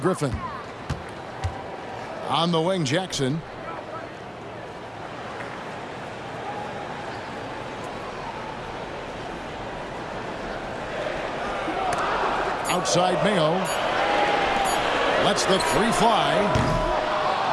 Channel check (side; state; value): both; identical; correlation 1.00